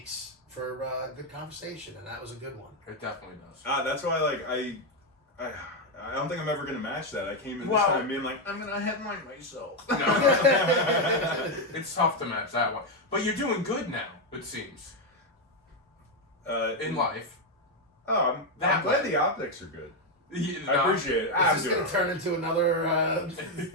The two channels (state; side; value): normal; both; correlation 0.05